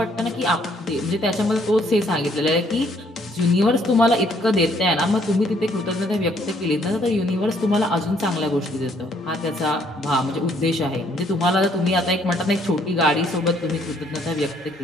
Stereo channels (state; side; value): normal; both; correlation 0.66